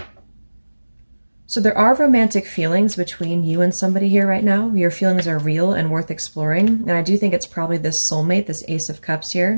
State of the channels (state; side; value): inverted; both; correlation -1.00